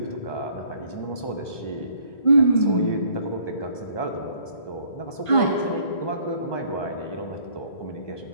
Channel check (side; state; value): right; late; 1.2 ms